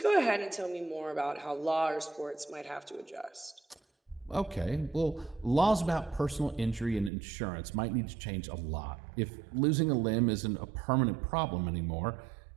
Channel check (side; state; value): left; drops out; at 7.1 s